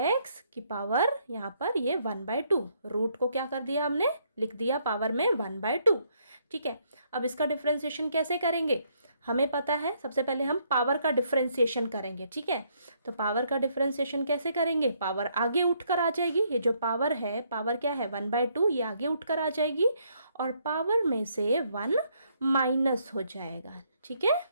की पावर, यहाँ पर ये 1/2, रूट को क्या कर दिया हमने, लिख दिया पावर में 1/2। ठीक है, अब इसका डिफरेंशिएशन कैसे करेंगे, हमें पता है सबसे पहले हम पावर का डिफरेंशिएशन करेंगे। ठीक है, तो पावर का डिफरेंशिएशन कैसे करेंगे, पावर आगे उठकर आ जाएगी, ये जो पावर है, पावर क्या है 1/2, ये आगे उठकर आ जाएगी और पावर में से 1 माइनस हो जाएगा। ठीक है,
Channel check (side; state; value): both; inverted; correlation -0.71